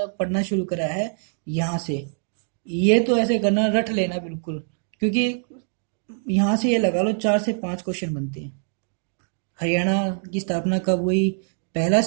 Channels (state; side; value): silent; left; 63 dB below the other